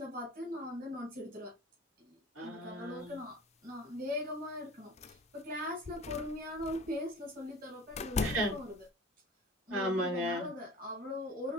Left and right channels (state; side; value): normal; both; correlation 0.43